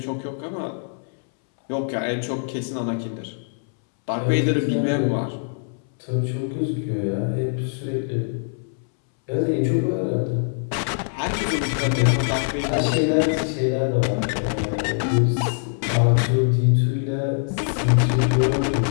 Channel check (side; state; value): right; silent; 63 dB below the other